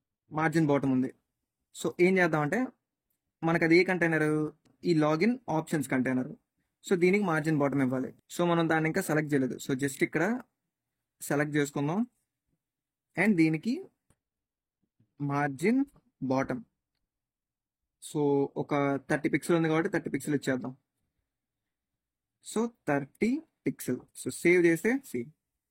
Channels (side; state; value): both; identical; correlation 1.00